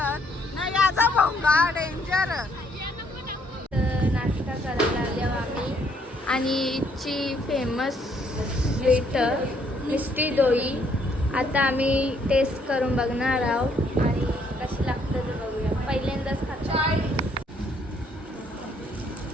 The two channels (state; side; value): normal; both; correlation 0.68